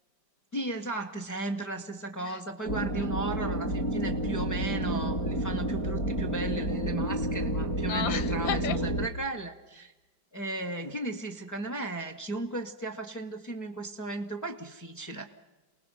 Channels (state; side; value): late; right; 5.1 ms